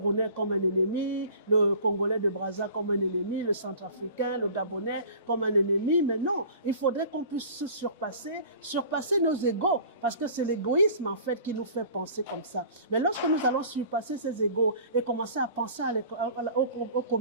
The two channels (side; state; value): both; inverted; correlation -0.44